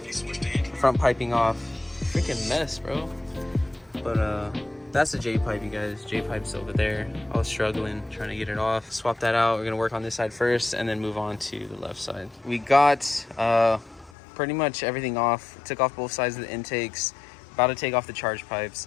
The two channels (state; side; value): drops out; right; at 14.1 s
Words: front piping off. Freaking mess, bro. But that's the J pipe, you guys. J pipe's over there. I was struggling trying to get it off. Swap that out. We're gonna work on this side first and then move on to the left side. We got pretty much everything off. Took off both sides of the intakes. About to take off the charge